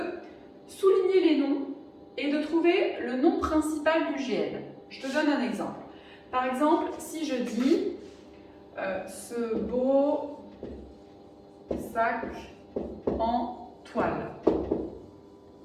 souligner les noms et de trouver le nom principal du GN. Je te donne un exemple. Par exemple, si je dis ce beau sac en toile.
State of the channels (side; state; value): both; identical; correlation 1.00